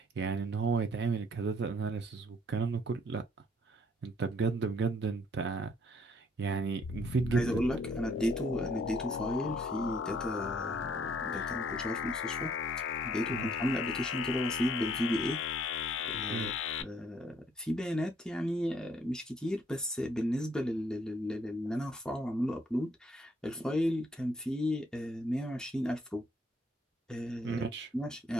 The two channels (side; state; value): both; normal; correlation 0.64